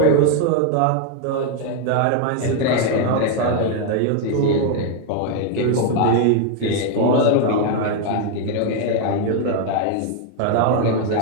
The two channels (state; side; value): different; both; correlation 0.01